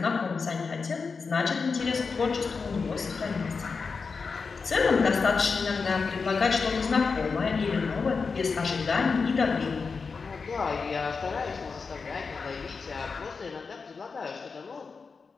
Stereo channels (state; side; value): quieter; right; 4.9 dB